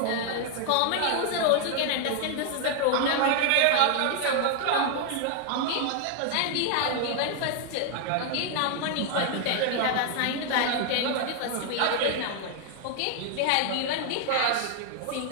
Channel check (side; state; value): both; different; correlation 0.00